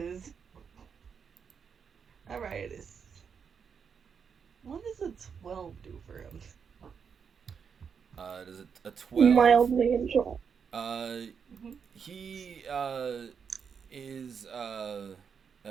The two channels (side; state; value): left; quieter; 6.6 dB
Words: a riot is. What does a 12 do for him? Does it a 12? Mildly enjoy. He is